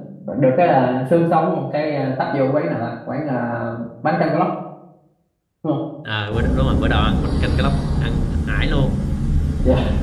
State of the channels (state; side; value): identical; both; correlation 1.00